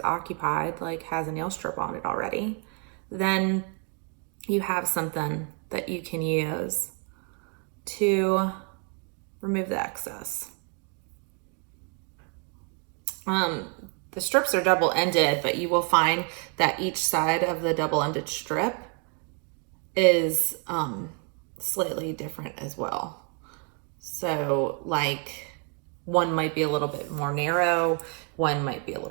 occupied, like has a nail strip on it already, then you have something that you can use to remove the excess. The strips are double-ended, but you will find that each side of the double-ended strip is slightly different as well. So like one might be a little bit more narrow, one might be a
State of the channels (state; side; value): quieter; left; 38.5 dB